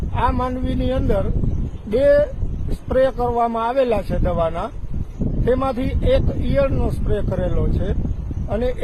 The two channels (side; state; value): both; identical; correlation 1.00